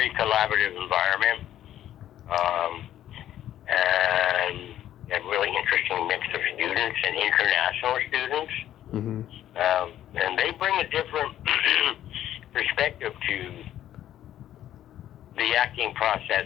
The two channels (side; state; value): right; quieter; 11.9 dB